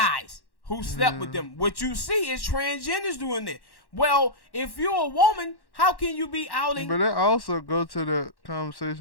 who slept with them. What you see is transgenders doing it. Well, if you're a woman, how can you be outing? But that also go to the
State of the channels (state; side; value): late; right; 1.1 ms